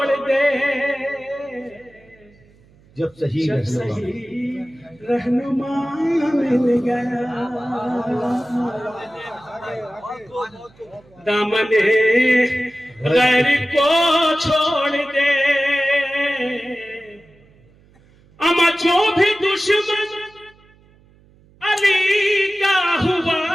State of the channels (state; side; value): noise; right; hum, 29 dB below the sound